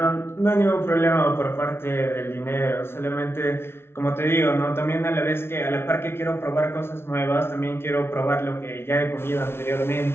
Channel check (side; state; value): right; late; 0.12 ms